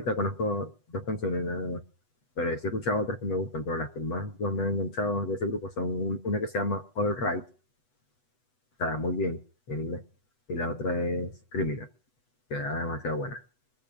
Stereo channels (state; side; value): late; right; 8.1 ms